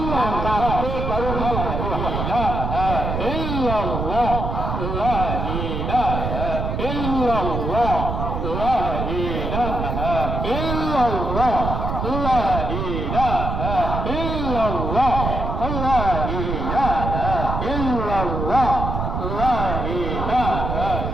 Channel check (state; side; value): noise; right; rumble, 2 dB below the sound